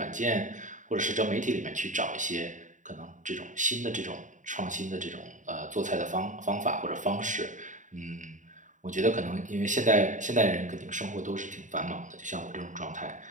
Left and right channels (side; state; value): left; late; 0.36 ms